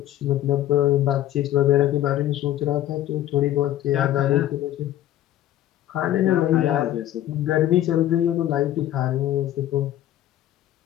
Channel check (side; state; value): right; quieter; 13.0 dB